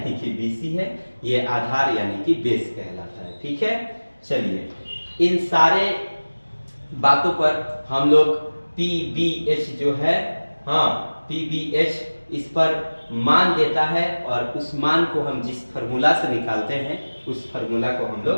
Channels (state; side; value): inverted; both; correlation -1.00